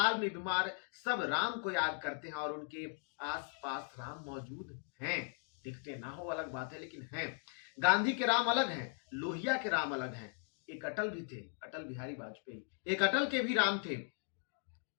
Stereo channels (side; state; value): right; silent; 52 dB below the other